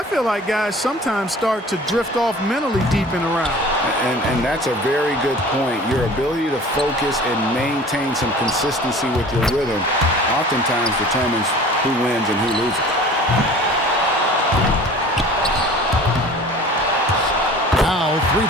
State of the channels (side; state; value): both; normal; correlation 0.44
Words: feel like guys sometimes start to drift off mentally deep in a round. And that's a very good point. Your ability to focus and maintain some consistency with your rhythm oftentimes determines who wins and who loses. Now 3